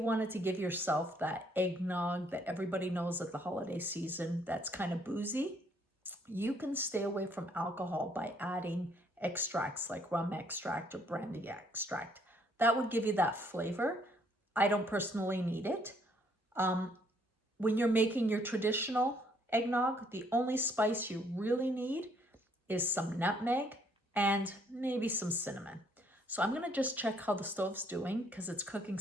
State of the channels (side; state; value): both; normal; correlation 0.66